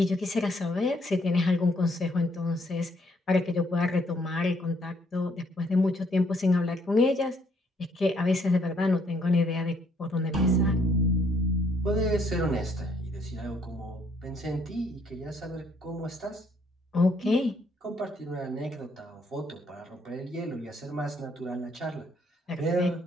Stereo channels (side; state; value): both; normal; correlation 0.68